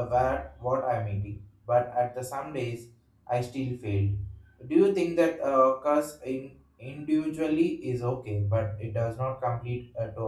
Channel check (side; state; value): both; identical; correlation 1.00